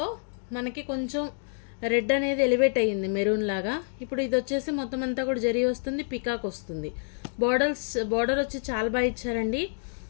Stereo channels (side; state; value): right; silent; digital silence